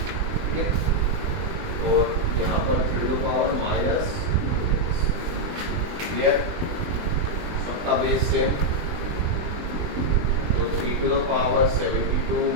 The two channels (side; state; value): left; late; 20 ms